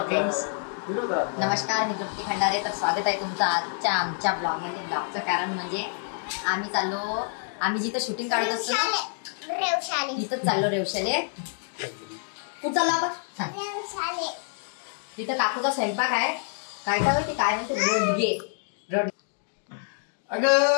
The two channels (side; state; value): right; silent; 60 dB below the other